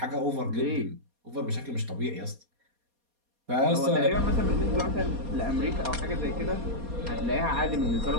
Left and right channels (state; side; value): late; left; 4.2 ms